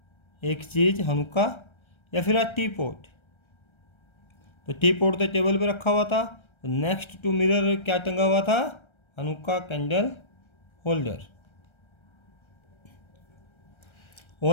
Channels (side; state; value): right; late; 1.3 ms